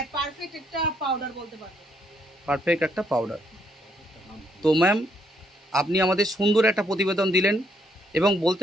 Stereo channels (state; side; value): normal; both; correlation 0.72